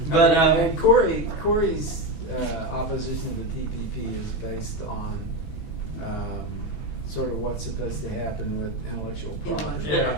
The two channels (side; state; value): right; late; 6.0 ms